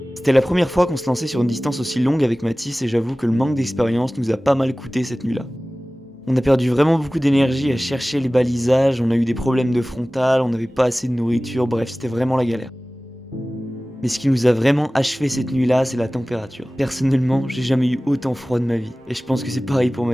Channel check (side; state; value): both; normal; correlation 0.97